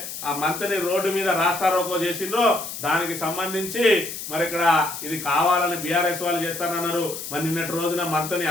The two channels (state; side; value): noise; left; hiss, 8 dB below the sound